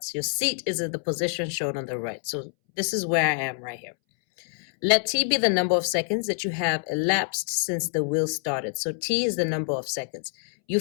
Your seat is at the position shown on the right. So this is where I am right here. Let t be the number of seconds that you have elapsed since the wheel started. So t is the number of seconds. You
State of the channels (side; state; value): right; silent; 61 dB below the other